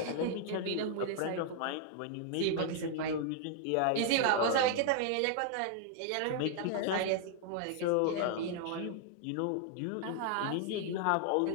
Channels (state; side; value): different; both; correlation 0.00